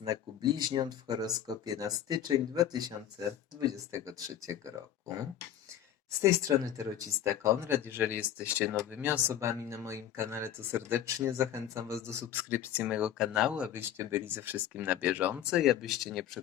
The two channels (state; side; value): quieter; right; 10.8 dB